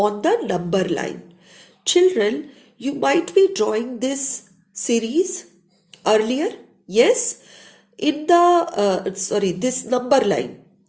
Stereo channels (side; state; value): both; identical; correlation 1.00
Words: the number line? Children, you might be drawing this series earlier. Yes? In this number line.